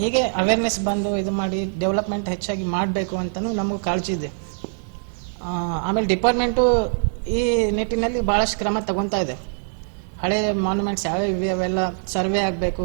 ಅವೇರ್ನೆಸ್ ಬಂದು ಇದು ಮಾಡಿ ಡೆವಲಪ್ಮೆಂಟ್ ಹೆಚ್ಚಾಗಿ ಮಾಡಬೇಕು ಅಂತಲೂ ನಮಗೂ ಕಾಳಜಿ ಇದೆ. ಆಮೇಲೆ ಡಿಪಾರ್ಟ್ಮೆಂಟು ಈ ನಿಟ್ಟಿನಲ್ಲಿ ಭಾಳಷ್ಟು ಕ್ರಮ ತಗೊತಾ ಇದೆ. ಹಳೆ ಮಾನ್ಯುಮೆಂಟ್ಸ್ ಯಾವ್ಯಾವ ಇವೆ ಅವೆಲ್ಲ ಸರ್ವೆ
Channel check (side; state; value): left; silent; 63 dB below the other